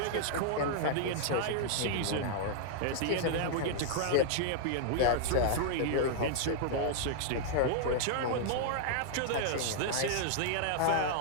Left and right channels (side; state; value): both; different; correlation -0.01